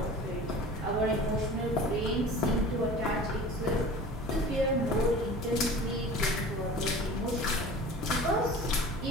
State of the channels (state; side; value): normal; both; correlation 0.40